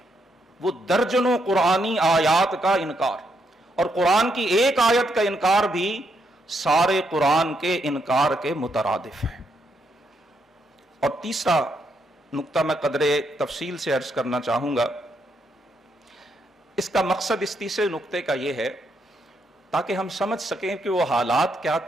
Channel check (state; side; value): normal; both; correlation 0.78